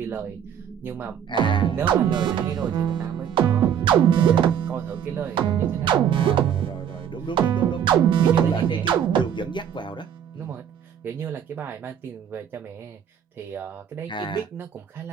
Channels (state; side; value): quieter; left; 8.8 dB